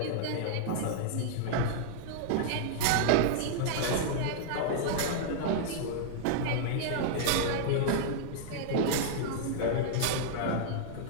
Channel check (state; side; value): different; both; correlation -0.01